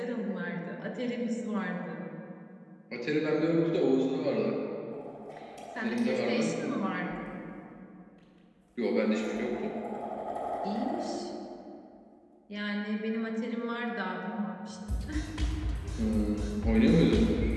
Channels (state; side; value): identical; both; correlation 1.00